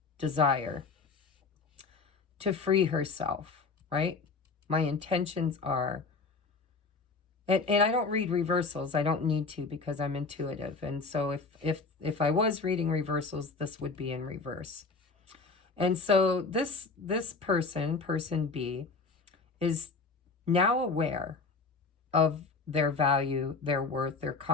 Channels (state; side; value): quieter; right; 4.3 dB